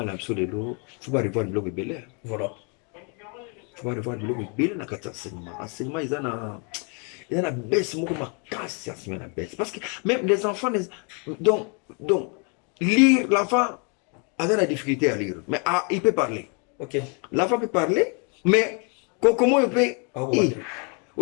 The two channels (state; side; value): quieter; right; 35.8 dB